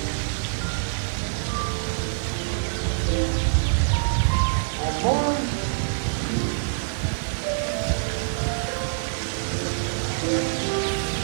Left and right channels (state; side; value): silent; left; 62 dB below the other